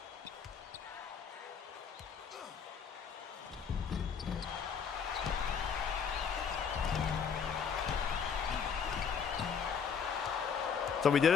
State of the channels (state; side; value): quieter; right; 6.6 dB